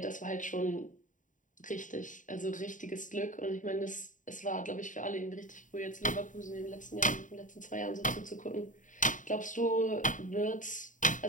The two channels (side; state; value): right; late; 0.37 ms